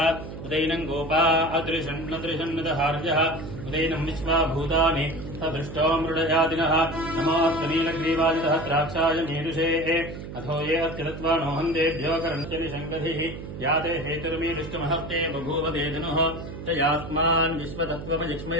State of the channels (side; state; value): right; noise; hum, 10 dB below the sound